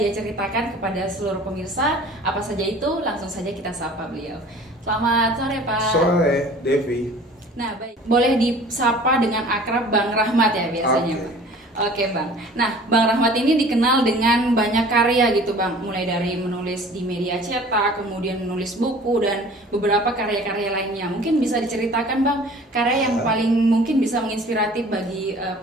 ceritakan kepada seluruh pemirsa. Apa saja itu? Langsung saja kita sapa beliau. Selamat sore, Pak. Sore, Devi. Nah, baik. Boleh disapa dengan akrab Bang Rahmat ya biasanya, Oke. Bang. Oke Bang, nah Bang Rahmat ini dikenal dengan banyak karya gitu Bang. Mulai dari menulis di media cetak, kemudian menulis buku dan beberapa karya-karya lainnya. Mungkin bisa diceritakan Bang, karya yang paling mungkin bisa menginspiratif bagi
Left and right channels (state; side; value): normal; both; correlation 0.47